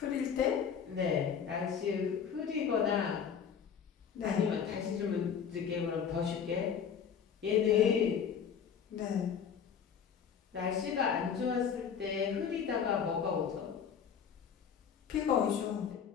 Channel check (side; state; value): right; quieter; 7.4 dB